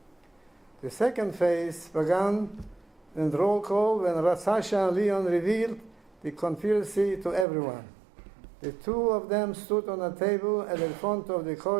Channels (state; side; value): drops out; left; at 7.5 s